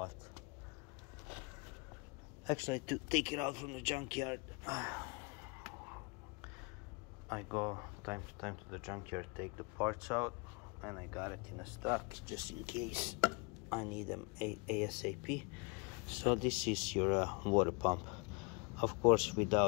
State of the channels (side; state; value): right; quieter; 31.0 dB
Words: actually, to take it out from the junkyard. I go time to time to the junkyard, take the parts out, and I got it in a stock just in case I need them ASAP. So this is your water pump. Of course,